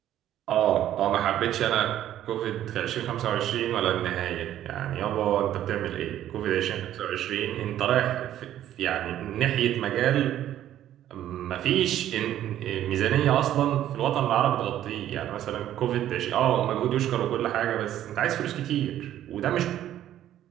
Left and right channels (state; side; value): quieter; left; 12.0 dB